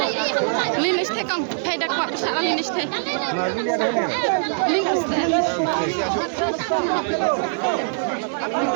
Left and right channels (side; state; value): left; silent; 61 dB below the other